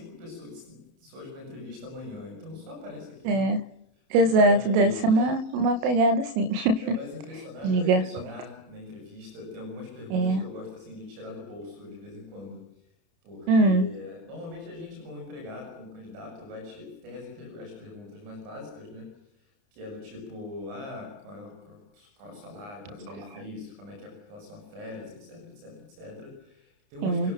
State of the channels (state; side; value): late; left; 31 ms